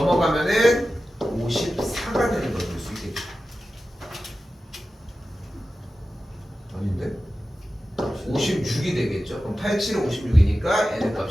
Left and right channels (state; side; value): normal; both; correlation 0.93